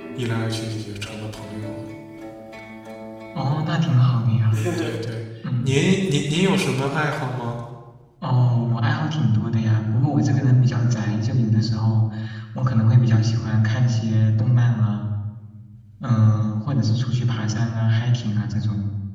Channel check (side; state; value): both; identical; correlation 1.00